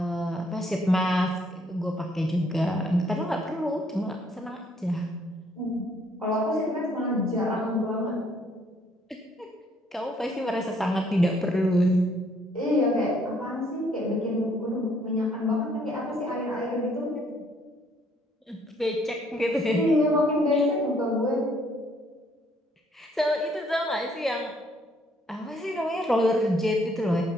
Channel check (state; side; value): normal; both; correlation 0.66